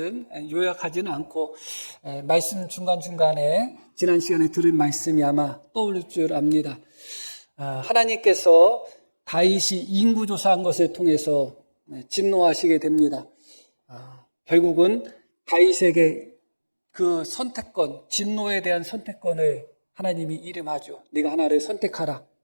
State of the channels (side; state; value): both; inverted; correlation -1.00